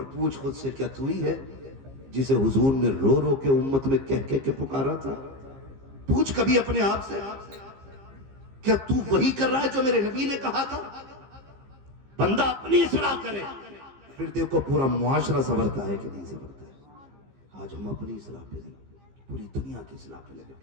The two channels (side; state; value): left; late; 15 ms